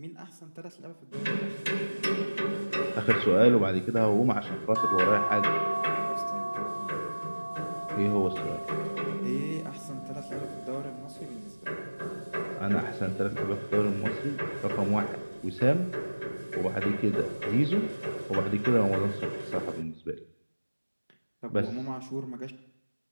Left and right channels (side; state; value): both; inverted; correlation -1.00